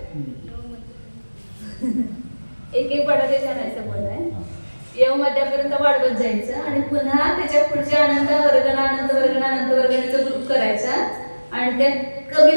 एक एक वाढा त्याच्यानं बोलाय. य मध्यापर्यंत वाढवत जायचं आणि पुन्हा त्याच्या पुढच्या अनंत वर्गणाचा ग्रुप करायचा आणि ते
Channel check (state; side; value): inverted; both; correlation -1.00